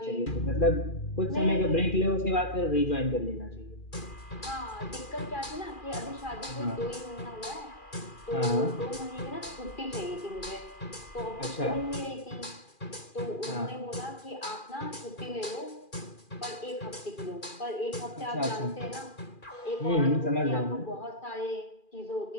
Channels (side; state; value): right; late; 2.4 ms